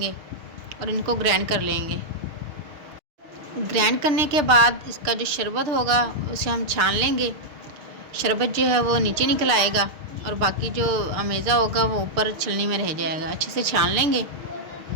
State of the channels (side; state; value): left; late; 6.5 ms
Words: और इनको ग्राइंड कर लेंगे। ग्राइंड करने के बाद इसका जो शरबत होगा उसे हम छान लेंगे। शरबत जो है वो नीचे निकल आएगा और बाकी जो अमेज़ा होगा वो ऊपर छलनी में रह जाएगा। अच्छे से छान लेंगे।